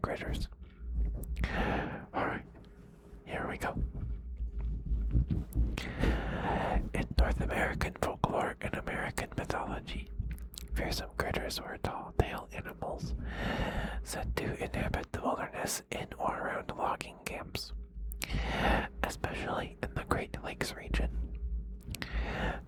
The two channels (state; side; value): identical; both; correlation 1.00